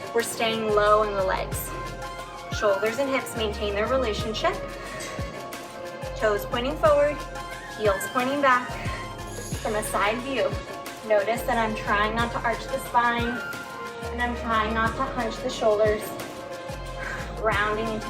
We're staying low in the legs. Shoulders and hips maintain their relationship. Toes pointing forward, heels pointing back. From a side view, notice that I'm trying not to arch the spine and I'm trying not to hunch the shoulders. Grounding into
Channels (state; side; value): identical; both; correlation 1.00